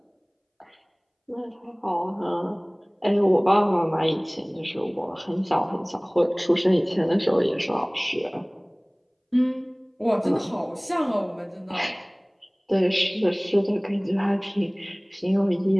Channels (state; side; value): identical; both; correlation 1.00